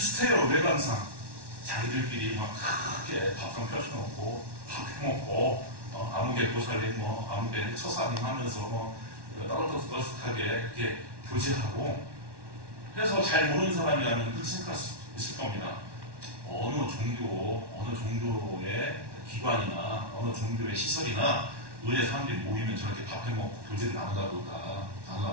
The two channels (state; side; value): late; left; 1.1 ms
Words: 외관상. 자기들끼리 막 크게 밥상 펴쳐놓고 밥 해먹고 아무개 고살림 아무개 처사님 하면서 따뜻하게 이렇게 교제하고 그래서 잘 모르는 사람이라면 그렇게 생각할 수 있을 겁니다. 어느 종교의 기관이나 어느 종교의 시설이나 의뢰 사람들이 모이면 저렇게 밥 해먹고 교제를 나누다